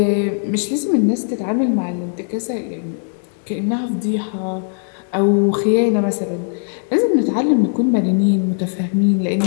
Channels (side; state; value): right; silent; digital silence